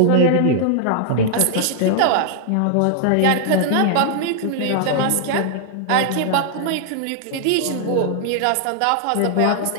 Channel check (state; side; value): different; both; correlation -0.01